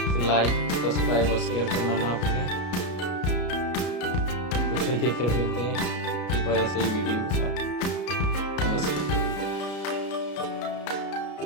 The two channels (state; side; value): late; right; 33 ms